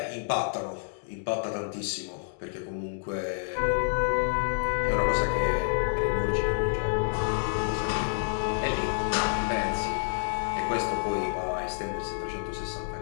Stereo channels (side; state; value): right; silent; digital silence